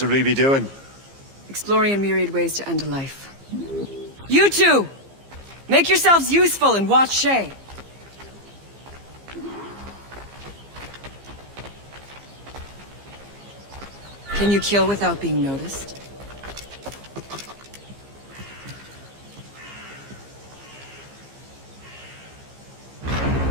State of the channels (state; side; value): late; left; 15 ms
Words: we be doing? Exploring a myriad ways to end a life. You two! Make yourselves useful and watch Shay. Can you kill without being noticed?